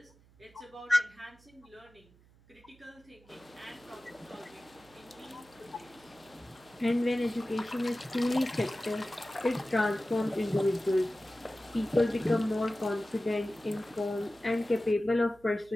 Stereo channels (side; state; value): right; noise; hum, 28 dB below the sound